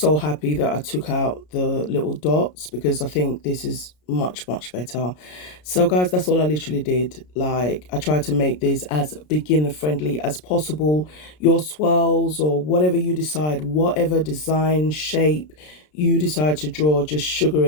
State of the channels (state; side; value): late; right; 33 ms